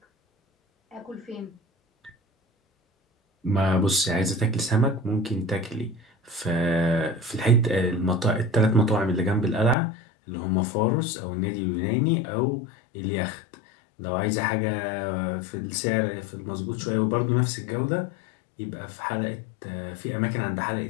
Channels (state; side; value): drops out; right; at 9.8 s